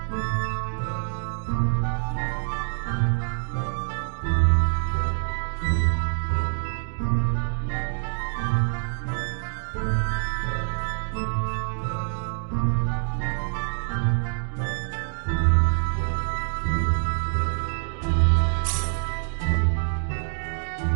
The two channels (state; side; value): silent; left; 61 dB below the other